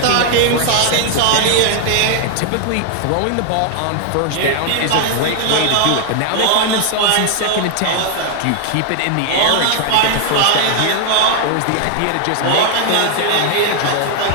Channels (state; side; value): different; both; correlation 0.00